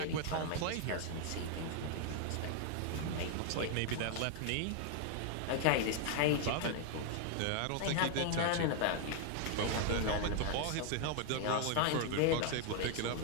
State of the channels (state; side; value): different; both; correlation 0.00